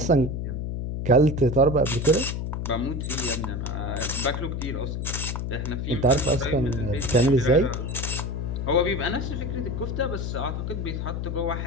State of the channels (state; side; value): noise; left; hum, 3 dB below the sound